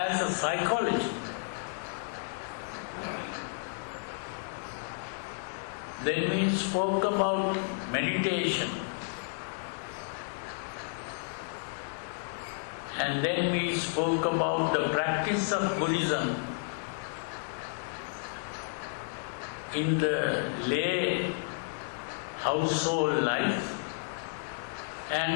a psychology. Then we spoke about meditation. And then we spoke about the practice of Buddhism in the lay household life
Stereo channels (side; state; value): right; silent; digital silence